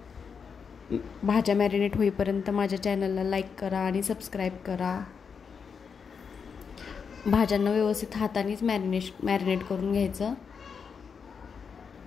भाज्या मॅरिनेट होईपर्यंत माझ्या चॅनलला लाईक करा आणि सबस्क्राईब करा। भाज्यांना व्यवस्थित हातानेच मॅरिनेट करून घ्यायचं।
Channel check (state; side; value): quieter; right; 6.1 dB